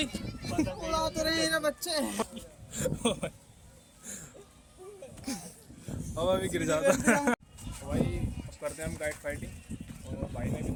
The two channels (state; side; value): identical; both; correlation 1.00